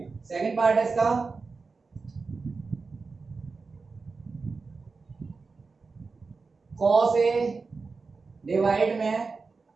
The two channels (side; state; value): left; quieter; 4.3 dB